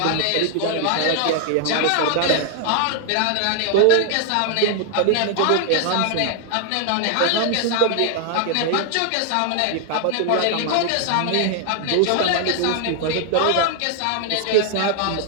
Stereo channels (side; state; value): both; different; correlation 0.00